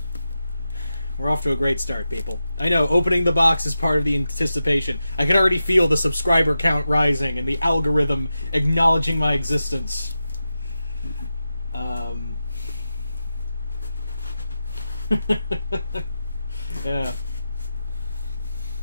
We're off to a great start, people. I know, opening the box is part of the anticipation. I can already feel the subscriber count rising and the algorithm acknowledging my existence. Yeah.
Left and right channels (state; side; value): inverted; both; correlation -0.91